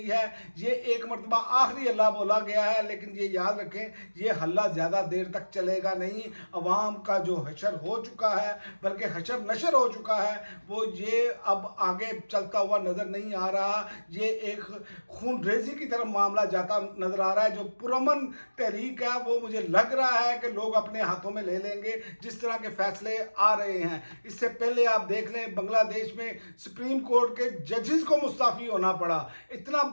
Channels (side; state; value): both; inverted; correlation -1.00